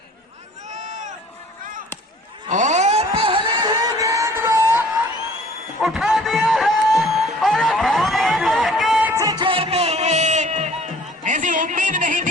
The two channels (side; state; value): both; normal; correlation 0.52